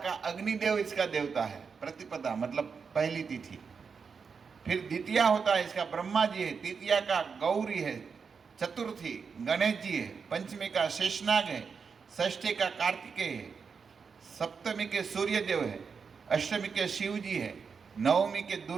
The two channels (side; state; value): left; quieter; 5.7 dB